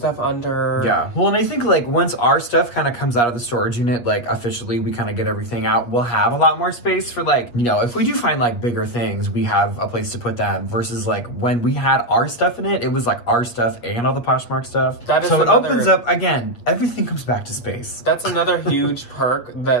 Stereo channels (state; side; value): late; right; 8.3 ms